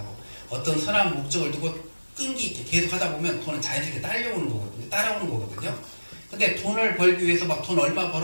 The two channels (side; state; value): both; inverted; correlation -1.00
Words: 어떤 선한 목적을 두고 끈기 있게 계속 하다 보면 돈은 자연스럽게 따라오는 거거든요. 근데 돈을 벌기 위해서 막 돈 얼마